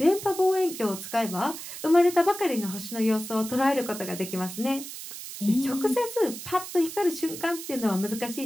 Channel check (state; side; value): noise; right; hiss, 10 dB below the sound